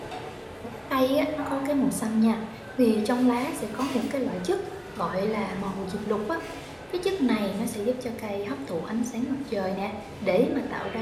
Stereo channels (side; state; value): both; identical; correlation 1.00